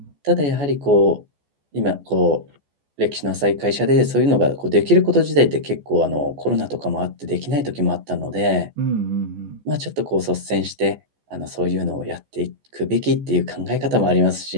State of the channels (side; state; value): left; late; 14 ms